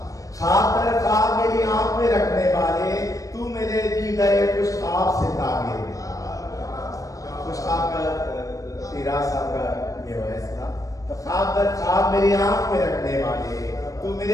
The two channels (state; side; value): late; right; 0.16 ms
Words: خواب در خواب میری آنکھ میں رکھنے والے، تو میرے دی گئے کچھ خواب سے تعبیر کچھ خواب کا تیرا صاحب کا یہ فیصلہ، تو خواب در خواب میری آنکھ میں رکھنے والے، تو